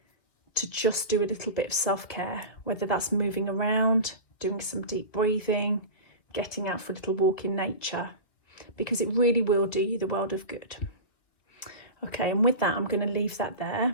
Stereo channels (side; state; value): right; late; 1.9 ms